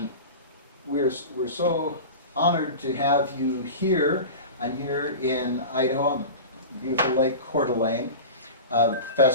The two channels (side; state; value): both; inverted; correlation -0.31